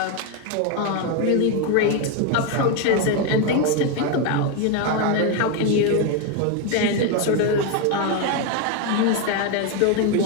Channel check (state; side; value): different; both; correlation 0.02